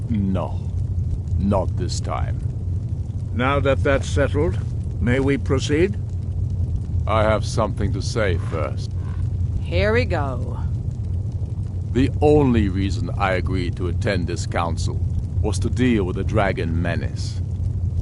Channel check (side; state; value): both; identical; correlation 1.00